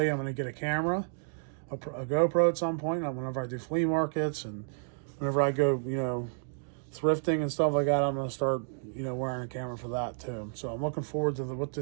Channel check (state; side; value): silent; left; digital silence